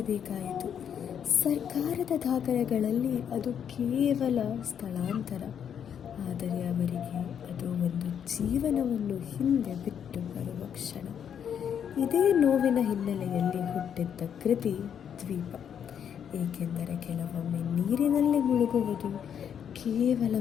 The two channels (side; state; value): right; quieter; 8.4 dB